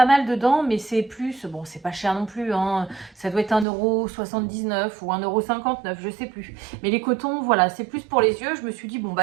mal dedans, mais c'est plus... Bon, c'est pas cher non plus. Hein. Ça doit être 1,79€ ou 1,59€, je sais plus. Mais les cotons, voilà, c'est plus pour les yeux. Je me suis dit, bon,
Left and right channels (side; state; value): left; drops out; at 3.7 s